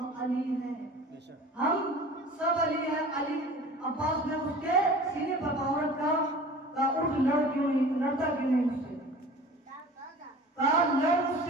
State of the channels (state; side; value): normal; both; correlation 0.41